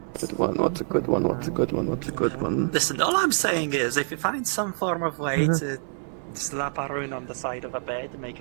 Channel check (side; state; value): left; silent; 61 dB below the other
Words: one? What's a good one? What's a good one? What's a good one? Listen, all I'm saying is, if you find some form of way to slap a rune on the side of a bed to make